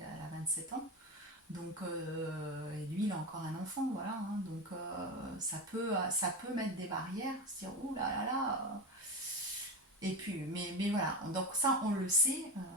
elle a 27 ans. Donc, et lui, il a encore un enfant, voilà. Hein, donc, ça peut mettre des barrières, se dire, ouh là là là. Et puis, mais voilà. Donc, ça, on le sait.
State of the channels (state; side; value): normal; both; correlation 0.20